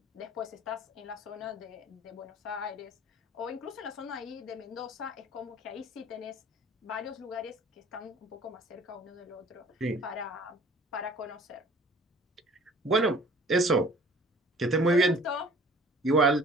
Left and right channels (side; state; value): both; normal; correlation 0.50